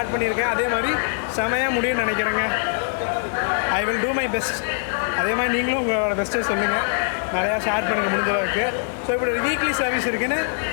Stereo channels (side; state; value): right; silent; digital silence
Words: பண்ணியிருக்கேன், அதே மாதிரி செமையாக முடியும்னு நினைக்கிறேங்க. I will do my best. அதே மாதிரி நீங்களும் உங்களோட பெஸ்ட்டை சொல்லுங்கள், நிறையா ஷேர் பண்ணுங்கள் முடிஞ்ச அளவுக்கு. ஸோ இப்படி ஒரு வீக்லி சர்வீஸ் இருக்குதுன்னு